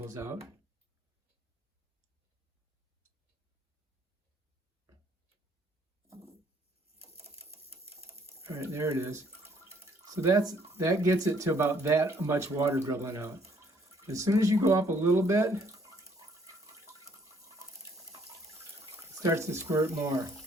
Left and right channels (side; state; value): both; normal; correlation 0.64